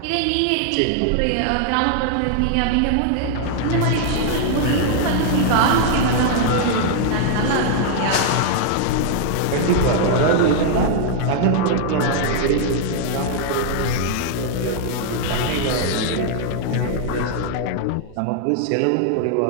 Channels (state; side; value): different; both; correlation 0.00